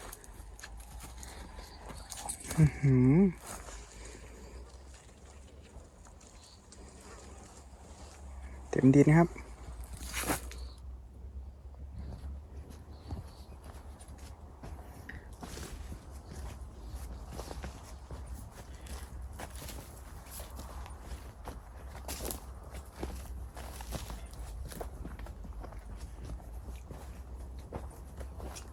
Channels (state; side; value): identical; both; correlation 1.00